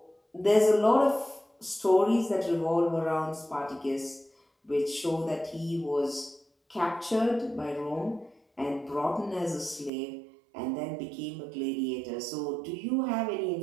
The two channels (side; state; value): left; drops out; at 9.9 s